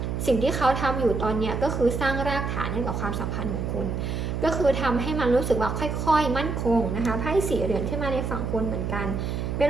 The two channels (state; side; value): noise; right; hum, 2 dB below the sound